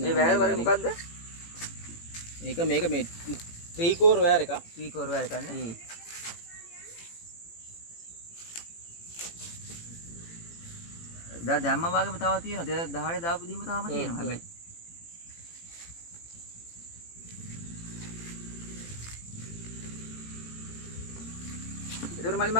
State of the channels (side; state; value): right; late; 18 ms